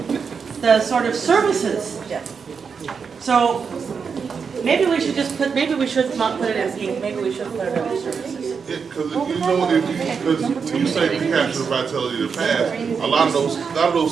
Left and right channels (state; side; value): quieter; left; 5.9 dB